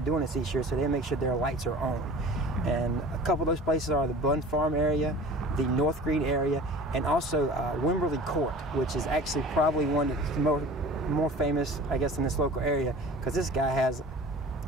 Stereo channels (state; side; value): normal; both; correlation 0.41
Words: doing this each year, so they make sure their lights are on. And a couple of those places are the Bun Farm area, the North Green area, and also Wimberley Court, which is actually probably one that's more famous, I guess, in this local area, because this guy has